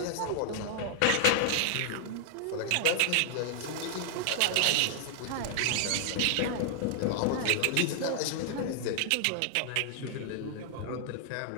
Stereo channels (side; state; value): both; different; correlation 0.00